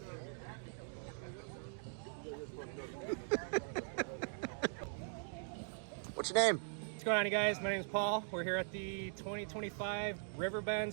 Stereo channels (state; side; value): silent; left; digital silence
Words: What's your name? What's going on, you guys? My name is Paul. We're here at the 2025 Riverbends